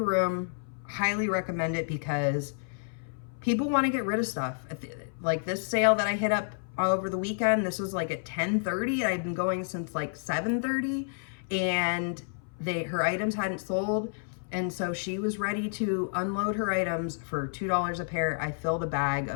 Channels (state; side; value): silent; right; 58 dB below the other